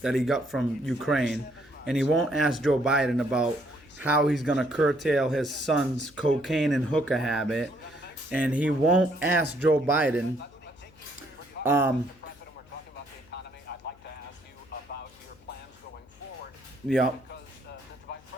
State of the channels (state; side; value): noise; left; hum, 26 dB below the sound